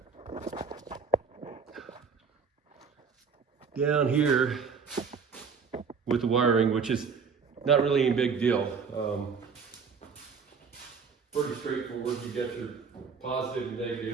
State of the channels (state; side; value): quieter; left; 5.7 dB